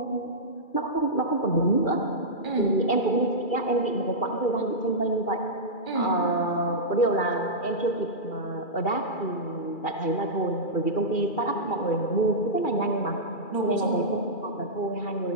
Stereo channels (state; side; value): late; right; 2.4 ms